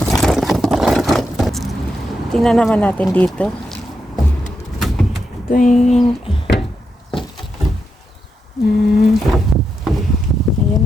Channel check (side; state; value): both; normal; correlation 0.84